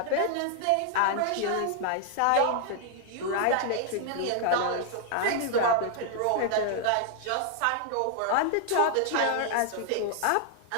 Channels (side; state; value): both; different; correlation 0.00